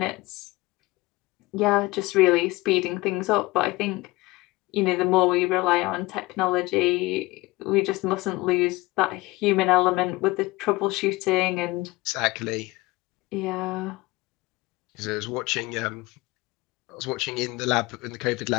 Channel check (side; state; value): right; quieter; 21.3 dB